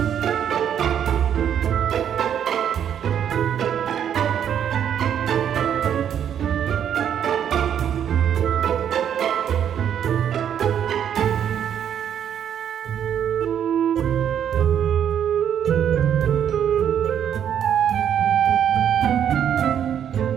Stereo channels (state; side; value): quieter; left; 9.2 dB